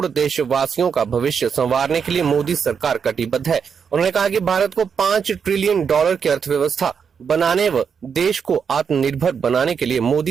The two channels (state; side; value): quieter; left; 6.6 dB